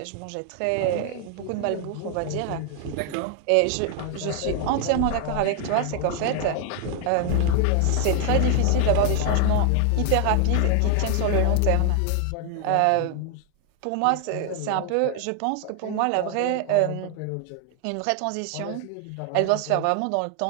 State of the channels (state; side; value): different; both; correlation 0.00